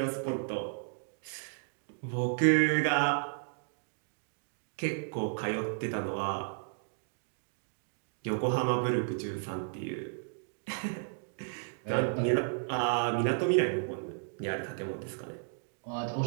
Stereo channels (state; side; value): silent; left; digital silence